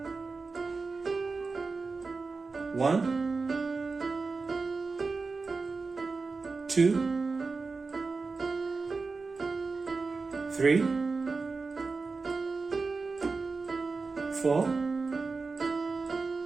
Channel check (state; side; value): quieter; left; 4.2 dB